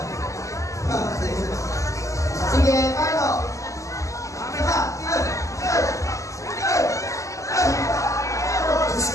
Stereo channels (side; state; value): right; late; 0.16 ms